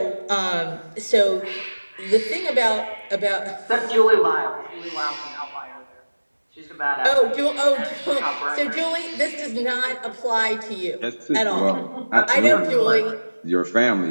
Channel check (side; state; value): both; inverted; correlation -1.00